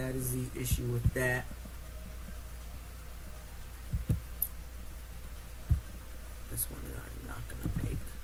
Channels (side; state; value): both; identical; correlation 1.00